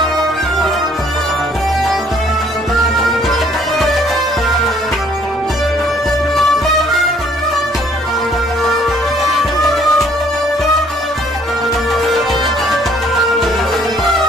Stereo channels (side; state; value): both; normal; correlation 0.62